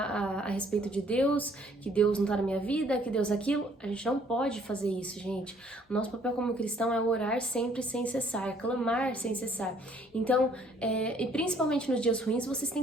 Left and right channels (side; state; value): both; normal; correlation 0.61